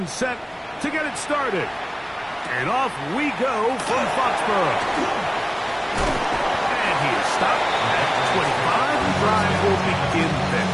set to get it started. And off we go from Foxborough. And he is stopped at 25. The drive will begin there.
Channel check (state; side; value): identical; both; correlation 1.00